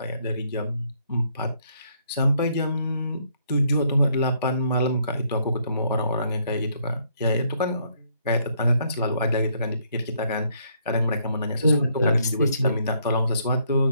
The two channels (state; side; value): inverted; both; correlation -0.69